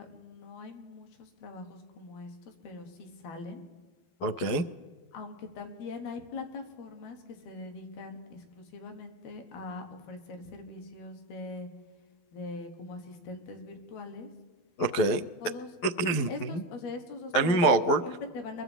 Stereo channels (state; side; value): late; right; 12 ms